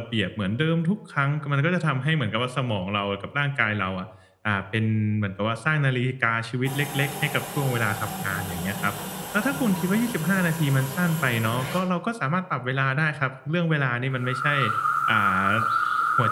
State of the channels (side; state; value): both; identical; correlation 1.00